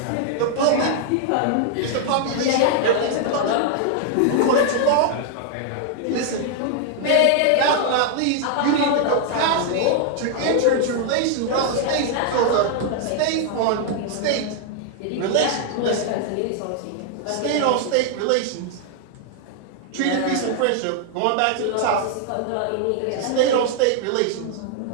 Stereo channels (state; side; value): different; both; correlation 0.00